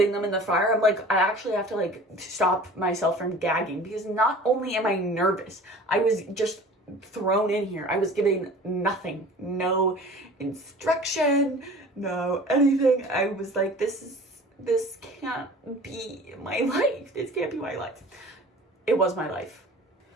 them in the fryer. I'm like, I actually have to like stop myself from gagging because not only am I nervous, I was just thrown in here. I was given nothing, no instruction, no anything. I was like, this can't be my life. This can't be my life. It was my life.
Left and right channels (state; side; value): normal; both; correlation 0.43